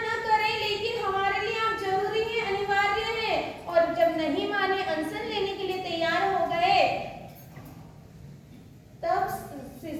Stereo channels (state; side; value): identical; both; correlation 1.00